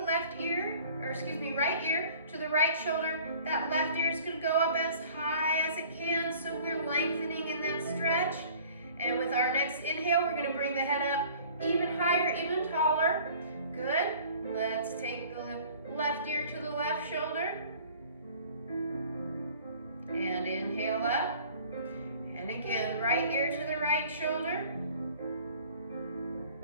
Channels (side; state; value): both; inverted; correlation -0.50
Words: right ear to the right shoulder. That left ear is going to go up as high as it can, so we're lengthening in that stretch. And with our next inhale, we're going to bring the head up even higher, even taller. Good. Let's take the left ear to the left shoulder. And inhale up. And again, right ear to the right shoulder.